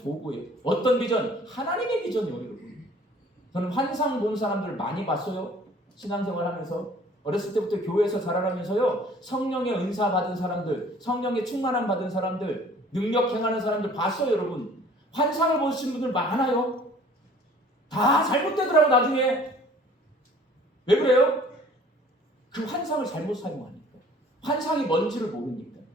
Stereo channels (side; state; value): both; normal; correlation 0.52